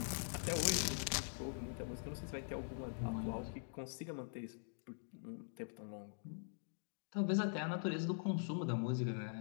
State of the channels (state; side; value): silent; right; digital silence